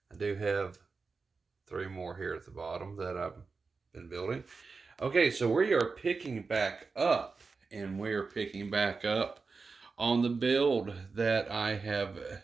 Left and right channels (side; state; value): left; quieter; 4.5 dB